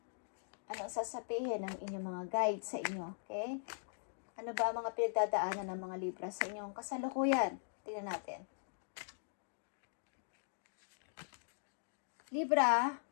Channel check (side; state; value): right; silent; digital silence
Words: Ano sasabihin ng inyong mga guide sa inyo, okay? Ano ba ang mga pinagdadaanan ng mga Libra sa inyong kasalukuyan? Tingnan natin. Libra,